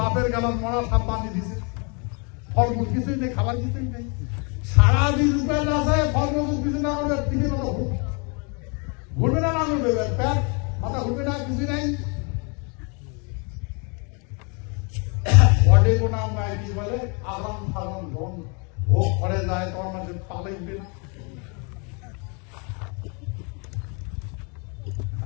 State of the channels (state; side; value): quieter; right; 34.9 dB